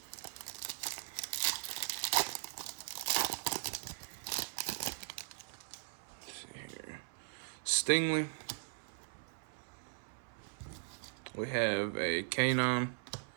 Stingley. We have a Kanon,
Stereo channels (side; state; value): left; silent; 52 dB below the other